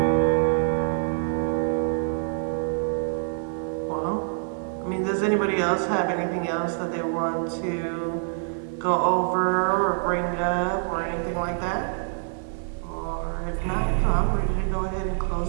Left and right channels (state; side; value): silent; left; digital silence